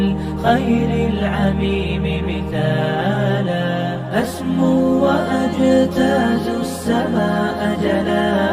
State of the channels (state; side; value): identical; both; correlation 1.00